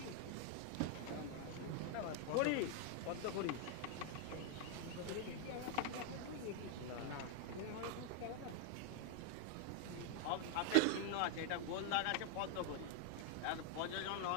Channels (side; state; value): both; different; correlation 0.00